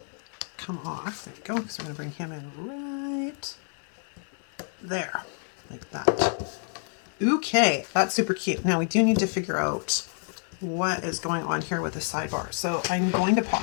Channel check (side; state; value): right; silent; 55 dB below the other